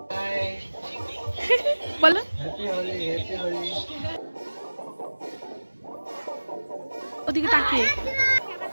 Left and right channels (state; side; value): inverted; both; correlation -1.00